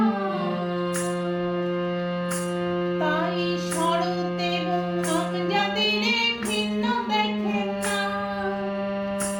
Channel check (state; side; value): identical; both; correlation 1.00